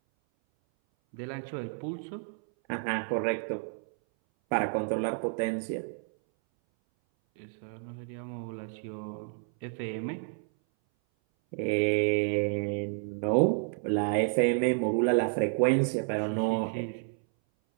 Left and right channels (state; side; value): silent; left; 58 dB below the other